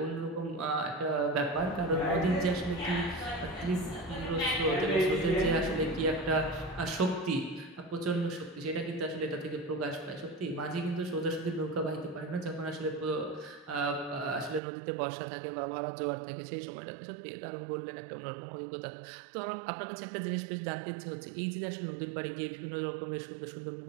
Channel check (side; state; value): left; drops out; at 14.6 s